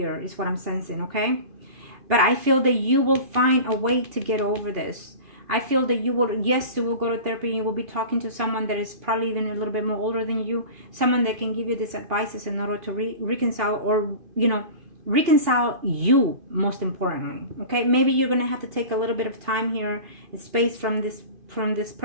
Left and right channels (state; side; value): late; left; 2.5 ms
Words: is what I'm sensing, okay? But I feel that you will find a way to get over this. I feel that you will, yes, you will go to therapy. You will be talking to someone that is probably even a little bit more older than you. Someone that can give you these advices in order to reconcile, or, you know, reconcile you, most importantly. Okay, maybe you're gonna have to take a little bit of time here, space from this